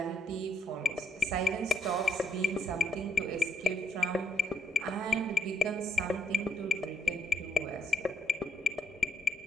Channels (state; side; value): normal; both; correlation 0.71